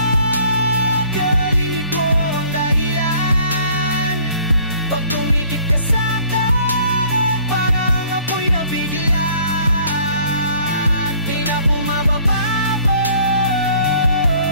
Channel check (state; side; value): inverted; both; correlation -0.56